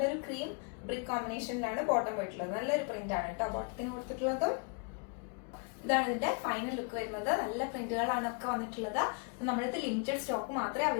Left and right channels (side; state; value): right; quieter; 35.8 dB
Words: ക്രീം ബ്രിക്ക് കോമ്പിനേഷനിലാണ് ബോട്ടം പോയിട്ടുള്ളത്. നല്ലൊരു പ്രിന്റ് ആണ് കേട്ടോ ബോട്ടത്തിന് കൊടുത്തിട്ടുള്ളത്. ഇതാണ് ഇതിന്റെ ഫൈനൽ ലുക്ക് വരുന്നത്. നല്ല പ്രിന്റുകളാണ് ഒക്കെ വന്നിട്ടുള്ളത്. നമ്മുടെ ലിമിറ്റഡ് സ്റ്റോക്ക് മാത്രമേ